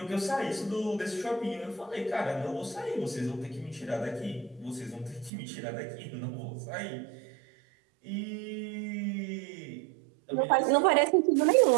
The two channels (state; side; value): drops out; left; at 5.3 s